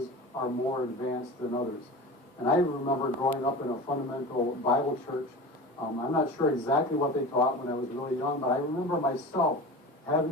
are more advanced than others. And I remember growing up in a fundamental Bible church. I'm not sure exactly what they taught when I was really young, but I remember myself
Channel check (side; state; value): both; normal; correlation 0.33